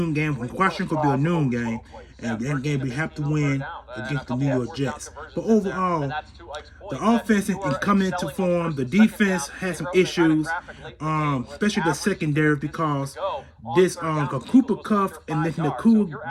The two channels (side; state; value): both; identical; correlation 1.00